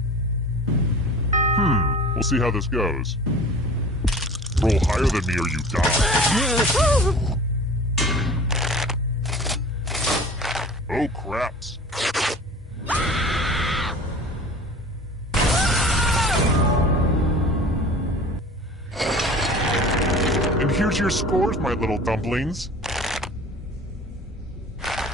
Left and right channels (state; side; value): normal; both; correlation 0.41